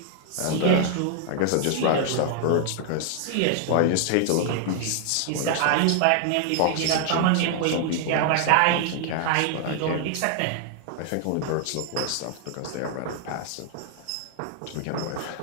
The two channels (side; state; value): both; different; correlation 0.00